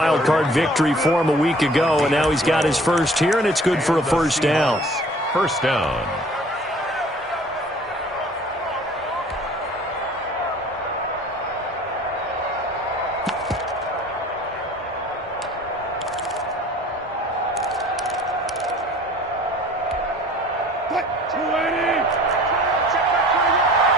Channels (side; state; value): both; normal; correlation 0.50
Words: card victory for him a week ago, and now he's got his first here, and it's good for a first down. First down.